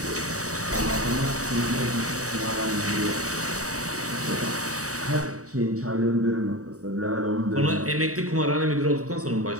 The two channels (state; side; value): late; left; 0.66 ms